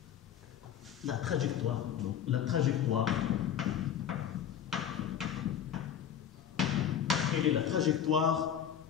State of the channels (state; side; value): quieter; right; 9.1 dB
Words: la trajectoire, non, la trajectoire, quelle est la trajectoire